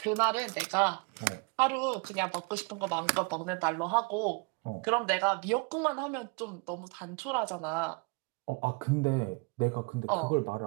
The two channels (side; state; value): left; quieter; 31.1 dB